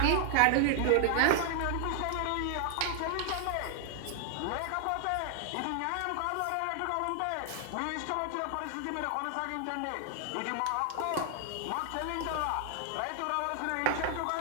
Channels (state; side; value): different; both; correlation 0.00